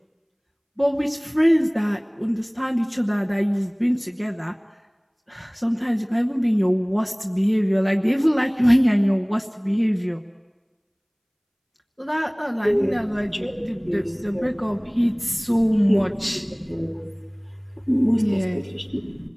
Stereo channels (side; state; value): both; identical; correlation 1.00